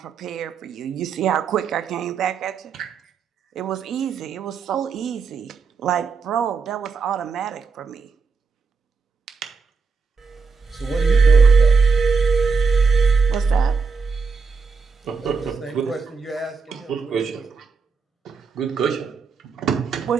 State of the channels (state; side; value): quieter; left; 4.9 dB